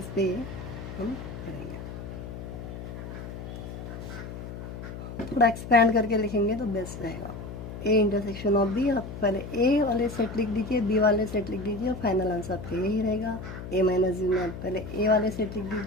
पे हम करेंगे। थोड़ा एक्सपैंड करके लिखेंगे तो बेस्ट रहेगा। ए इंटरसेक्शन ऑफ बी, आप पहले ए वाले सेट लिख दीजिए, बी वाले सेट लिख दीजिए और फाइनल आंसर आपका यही रहेगा। ए माइनस बी में आप पहले ए वाले सेट लिख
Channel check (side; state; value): left; noise; hum, 9 dB below the sound